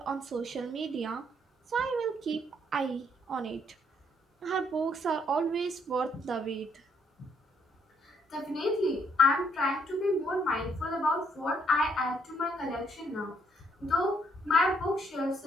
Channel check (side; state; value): both; normal; correlation 0.70